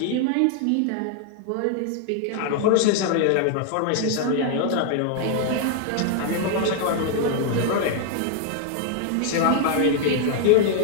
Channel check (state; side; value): different; both; correlation 0.00